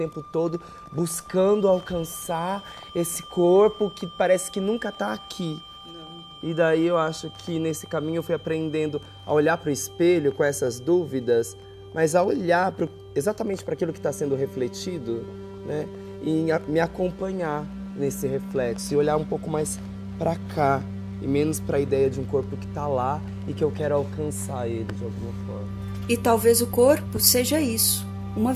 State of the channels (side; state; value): both; identical; correlation 1.00